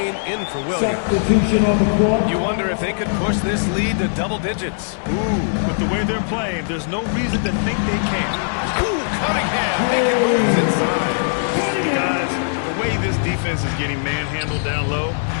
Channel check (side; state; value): right; silent; digital silence